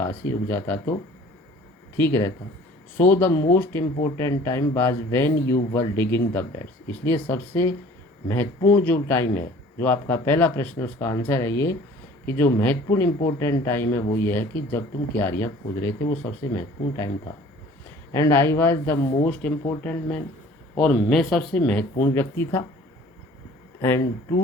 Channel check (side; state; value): both; normal; correlation 0.49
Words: ही रुक जाता तो ठीक रहता। So the most important time was when you were digging the beds, इसलिए सबसे महत्वपूर्ण जो टाइम है, जो आपका पहला प्रश्न उसका आंसर है ये कि जो महत्वपूर्ण इम्पोर्टेंट टाइम है वो ये है कि जब तुम क्यारियाँ खोद रहे थे, वो सबसे महत्वपूर्ण टाइम था। And I was the most important man, और मैं सबसे महत्वपूर्ण व्यक्ति था। And